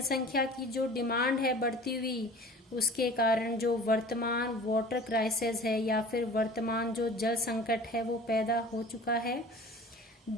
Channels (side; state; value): both; normal; correlation 0.43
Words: की जो डिमांड है बढ़ती हुई, उसके कारण जो वर्तमान वाटर क्राइसिस है या फिर वर्तमान जो जल संकट है वो पैदा हो चुका है।